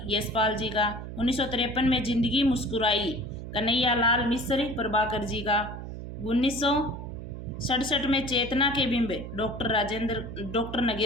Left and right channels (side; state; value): right; noise; hum, 9 dB below the sound